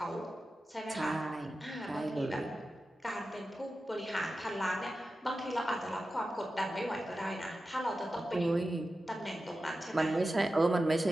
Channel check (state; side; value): normal; both; correlation 0.93